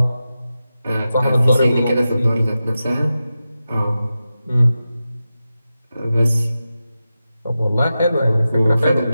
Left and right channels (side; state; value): both; inverted; correlation -0.92